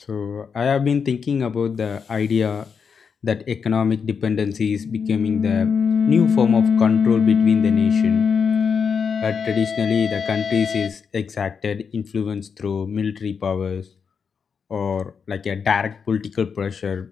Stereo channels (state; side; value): quieter; right; 6.2 dB